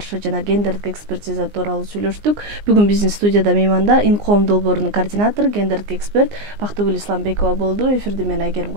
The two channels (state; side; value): late; left; 19 ms